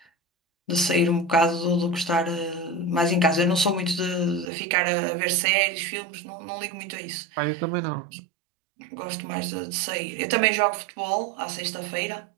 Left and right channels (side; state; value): left; drops out; at 4.5 s